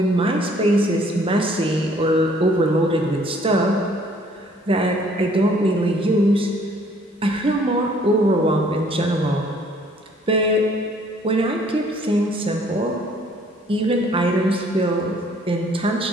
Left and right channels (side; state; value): both; normal; correlation 0.60